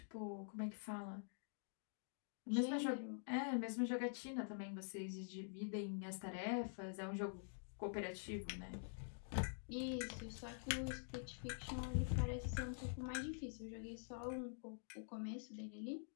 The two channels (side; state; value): right; silent; digital silence